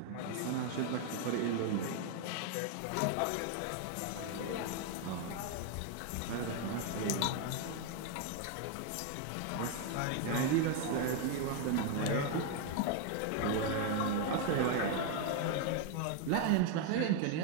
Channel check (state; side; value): different; both; correlation 0.01